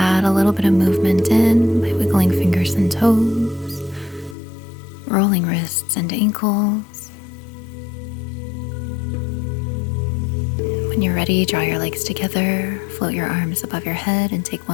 a little bit of movement in by wiggling fingers and toes, rolling wrists and ankles. When you're ready, draw your legs together, float your arms above your head, and take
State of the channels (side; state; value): right; drops out; at 4.4 s